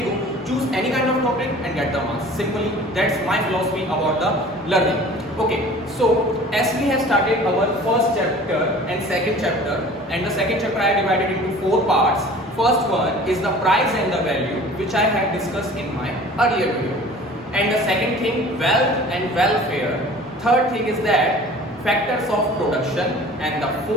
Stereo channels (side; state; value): both; normal; correlation 0.45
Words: go. Choose any kind of topic and get the marks. Simply, that's my philosophy about the learning. Okay, so as we have started our first chapter and second chapter, and the second chapter I divided into 4 parts. First one is the price and the value, which I had discussed in my earlier video. And the second thing, wealth and welfare. Third thing is that factors of production, and the